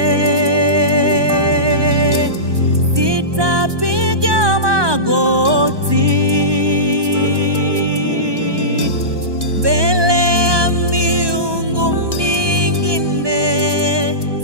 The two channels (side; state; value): left; late; 1.2 ms